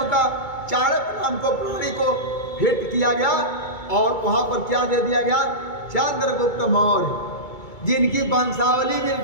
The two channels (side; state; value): right; late; 2.2 ms